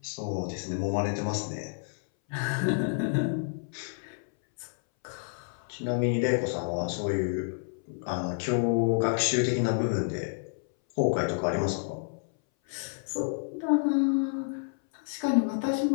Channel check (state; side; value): silent; right; 58 dB below the other